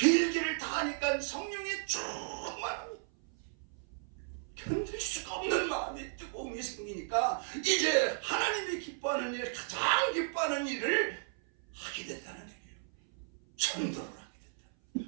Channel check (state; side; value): silent; left; 55 dB below the other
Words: 다 하니까 성령이 충만합니다. 견딜 수가 없는 마음이 뜨거움이 생기니까 이제 하나님이 기뻐하는 일, 가장 기뻐하는 일을 하게 된다는 얘기예요. 전도를 하게 된다.